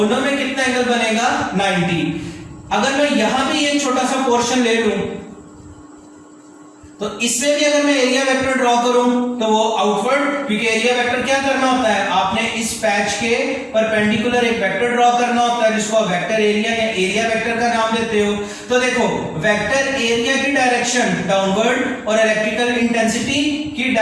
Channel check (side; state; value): both; identical; correlation 1.00